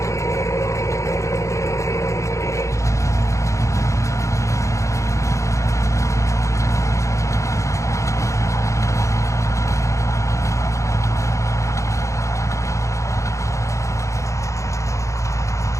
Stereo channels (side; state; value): right; late; 0.15 ms